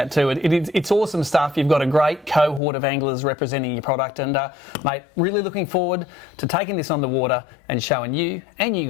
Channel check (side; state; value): right; drops out; at 2.6 s